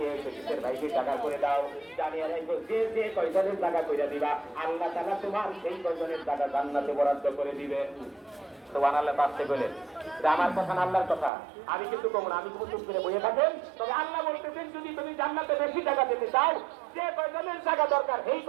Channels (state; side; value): drops out; left; at 11.3 s